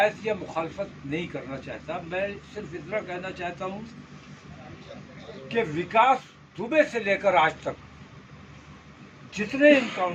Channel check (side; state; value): both; identical; correlation 1.00